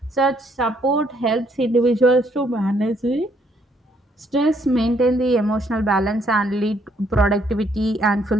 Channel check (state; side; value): normal; both; correlation 0.69